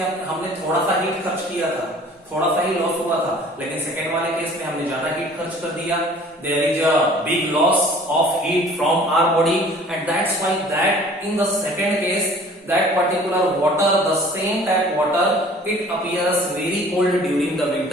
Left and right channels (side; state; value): both; normal; correlation 0.50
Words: हमने थोड़ा सा हीट खर्च किया था, थोड़ा सा ही लॉस हुआ था, लेकिन सेकेंड वाले केस में हमने ज्यादा हीट खर्च कर दिया। There is a big loss of heat from our body and that's why that in the second case that particular water, the same tap water, it appears very cold during the